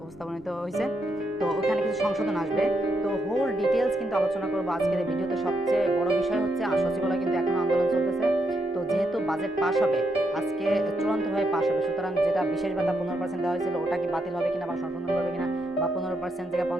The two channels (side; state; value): both; normal; correlation 0.79